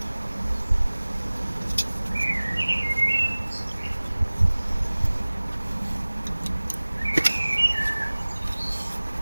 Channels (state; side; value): inverted; both; correlation -1.00